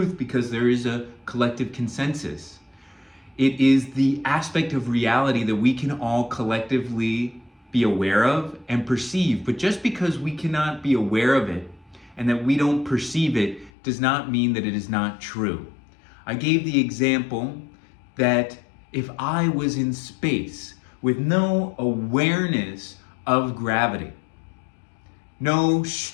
because there is a collective consensus. It is the aspect of reality that we can all collectively be aware of and perceive. But just because we cannot be aware of it and that we don't perceive it does not mean that it is not true. I gave the example that if I was in space with no awareness of gravity, no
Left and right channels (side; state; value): right; drops out; at 13.7 s